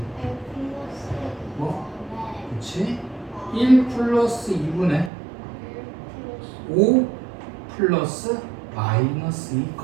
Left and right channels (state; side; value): drops out; left; at 5.1 s